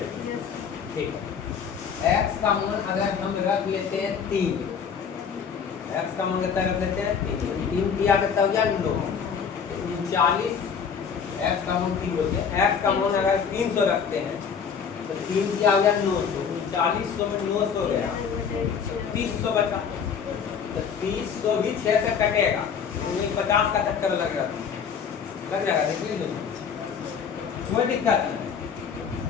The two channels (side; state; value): right; quieter; 6.8 dB